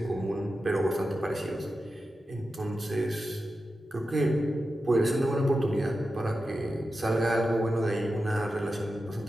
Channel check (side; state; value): both; normal; correlation 0.91